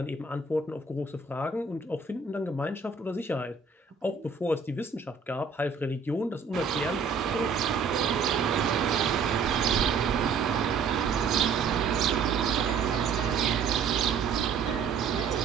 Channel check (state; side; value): quieter; left; 5.4 dB